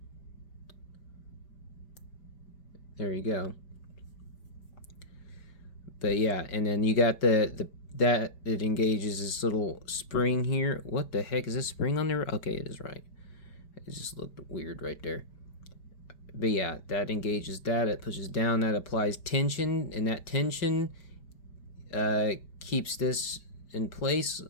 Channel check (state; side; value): late; right; 5.0 ms